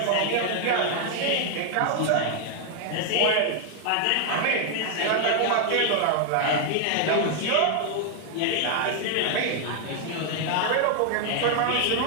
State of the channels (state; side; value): different; both; correlation 0.00